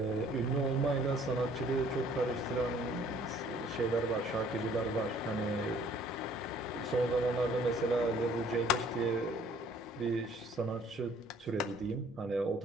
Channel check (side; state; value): both; normal; correlation 0.58